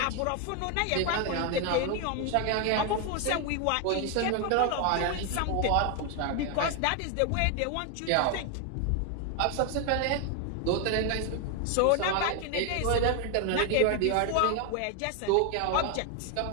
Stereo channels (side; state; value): both; different; correlation 0.01